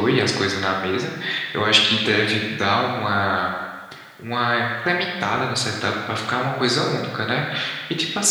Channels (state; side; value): identical; both; correlation 1.00